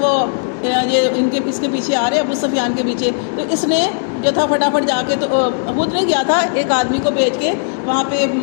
وہ یہ اس کے پیچھے آ رہے ہیں ابو سفیان کے پیچھے، تو اس نے جو تھا فٹافٹ جا کے تو خود نہیں گیا تھا، ایک آدمی کو بھیج کے وہاں پہ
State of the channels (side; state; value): right; silent; 66 dB below the other